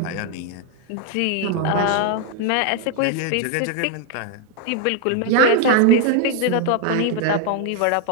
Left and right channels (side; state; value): both; different; correlation 0.01